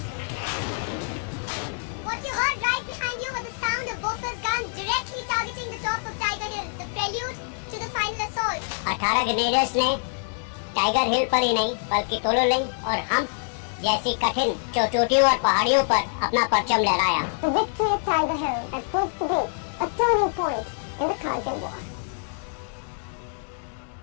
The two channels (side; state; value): right; silent; 61 dB below the other